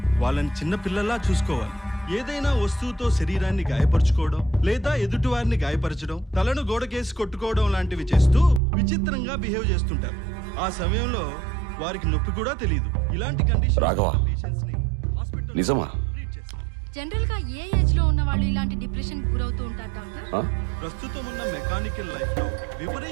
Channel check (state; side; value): drops out; left; at 8.6 s